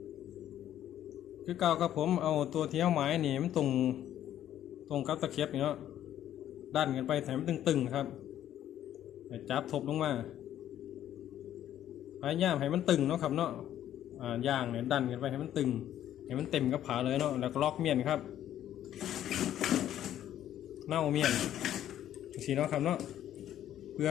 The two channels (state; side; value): quieter; right; 11.5 dB